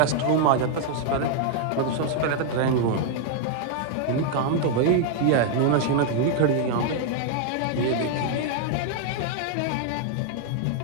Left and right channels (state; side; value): different; both; correlation 0.00